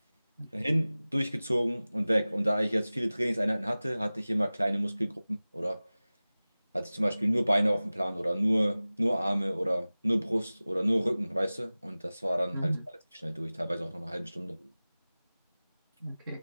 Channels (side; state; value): both; inverted; correlation -0.98